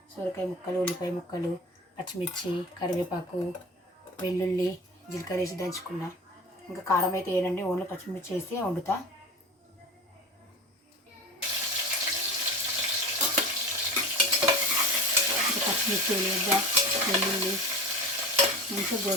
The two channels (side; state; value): both; normal; correlation 0.32